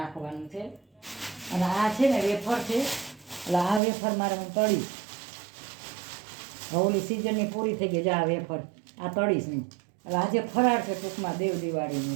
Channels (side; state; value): left; drops out; at 3.8 s